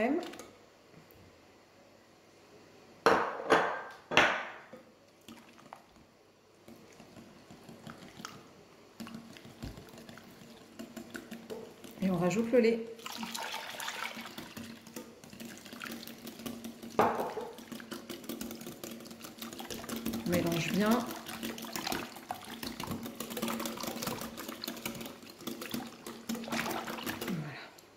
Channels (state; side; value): identical; both; correlation 1.00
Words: Et on rajoute le lait. On mélange bien. Voilà.